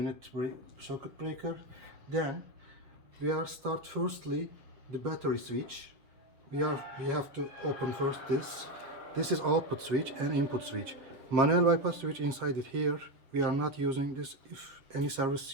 circuit breaker. Then we are start firstly the battery switch. We have to open first this. This is output switch and input switch. Manual bypass switch inside it here. We are not using this if any service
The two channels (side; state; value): left; late; 7.0 ms